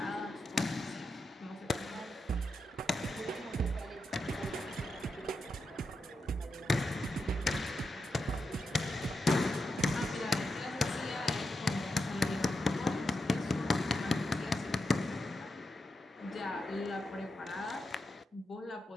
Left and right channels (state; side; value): normal; both; correlation 0.87